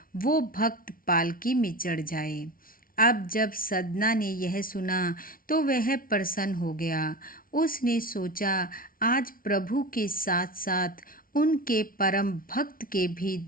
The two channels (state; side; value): late; right; 0.42 ms